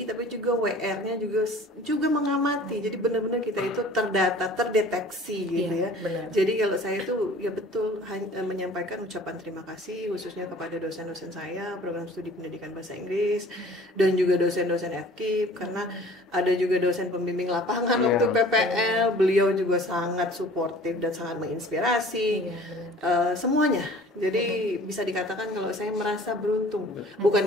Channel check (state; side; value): normal; both; correlation 0.48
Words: tapi juga WR-nya juga mengamati. Jadi benar-benar kita itu terdata, terdeteksi gitu ya. Benar. Jadi kalau saya itu ya betul menyampaikan ucapan terima kasih khususnya kepada dosen-dosen saya program studi pendidikan bahasa Inggris dan juga dosen-dosen FKIP karena ada juga dosen pembimbing lapangan waktu PPL. Beliau juga sangat suportif dan sangat menginspirasi semuanya. Jadi bisa dikatakan kalau saya merasa beruntung, bukan